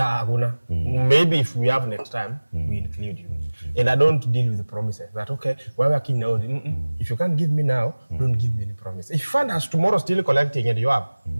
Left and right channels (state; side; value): inverted; both; correlation -1.00